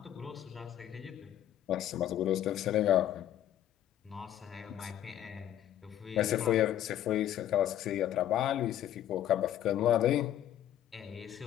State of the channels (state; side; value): quieter; right; 11.6 dB